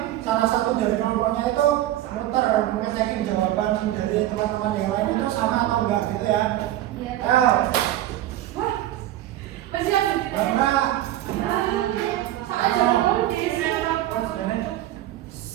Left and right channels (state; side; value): quieter; left; 13.9 dB